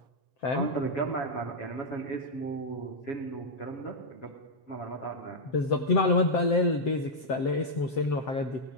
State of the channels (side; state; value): right; late; 7.7 ms